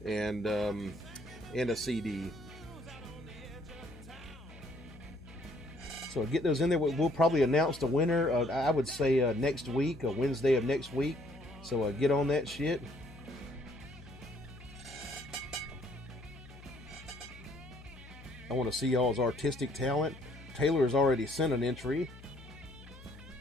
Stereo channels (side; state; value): left; noise; hum, 18 dB below the sound